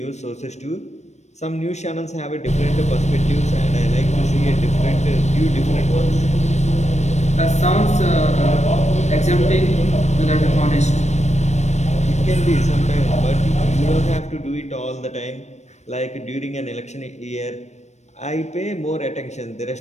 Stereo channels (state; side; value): late; right; 0.33 ms